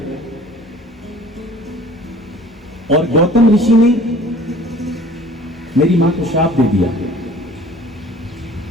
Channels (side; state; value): both; normal; correlation 0.49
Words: और गौतम ऋषि ने मेरी मां को श्राप दे दिया